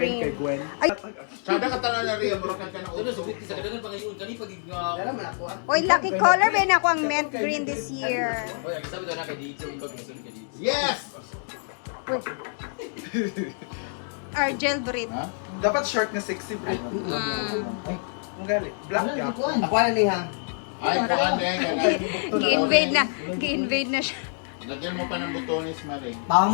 kay Gwen. Ay, Sada ka tanan na Rhea, mura ka na Ito na, subit sa kadagan pangayon, kani pag oy, lucky color ba na ako ang mint green this year. Oy, ang sabi daw na kay dito, ikaw gusto ka dito. Yes! Argel breed. Ha? Dapat short na sexy bro. Ang gali. Black ka. Ako na niya. Ay, kuan din. Gi-invade na siya. Lagyan mo pa ng butones, Marie.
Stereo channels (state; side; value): silent; right; 61 dB below the other